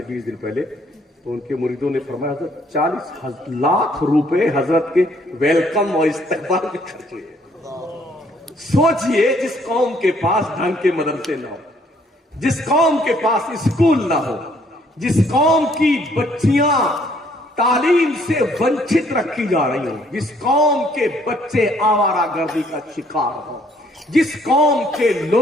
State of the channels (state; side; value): normal; both; correlation 0.65